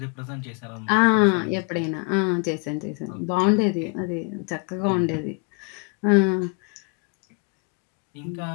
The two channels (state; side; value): quieter; right; 32.4 dB